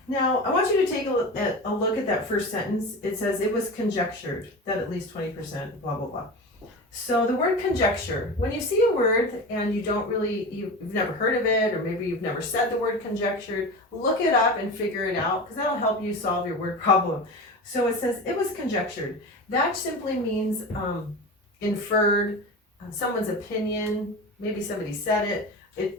Now, I want you to take a look at that first sentence. It says, it was conjectured that at least 20%, blah, blah, blah. So the word conjecture, when you see a word and you've never heard of it, or maybe you've never said the word conjectured, look it up and figure it out, because that'll help you solve your word problem. So it says, it was conjectured. That simply means inferred, someone's opinion, maybe somebody said it.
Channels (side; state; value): both; normal; correlation 0.29